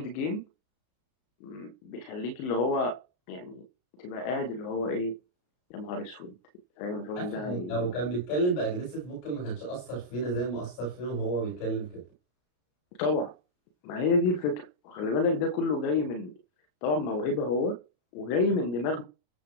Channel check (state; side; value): late; right; 33 ms